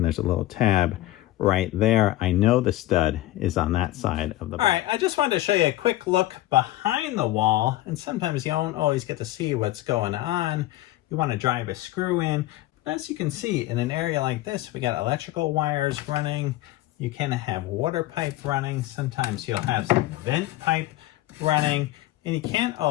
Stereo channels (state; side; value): quieter; right; 16.1 dB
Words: there's a little tab right there. I know the stud is on that side of the box. All right, I just wanted to show you a quick look behind the wall, and sometimes you don't always get to see what's going on. You want to drive a screw in. As you can see, in an area like this, we got electrical wires running. You can have water pipe running. Sometimes you'll have some vent pipe running, and you can't